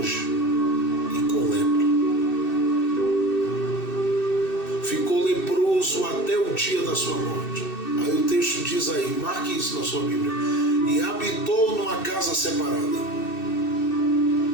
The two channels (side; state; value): right; late; 2.6 ms